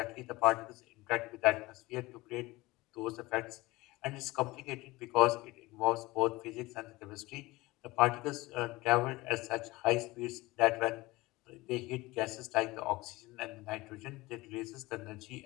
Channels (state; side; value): quieter; right; 20.7 dB